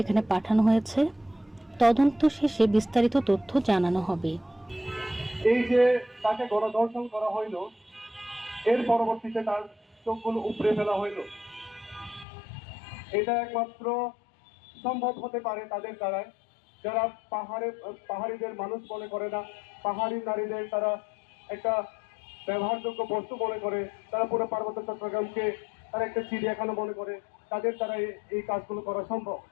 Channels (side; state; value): right; drops out; at 12.2 s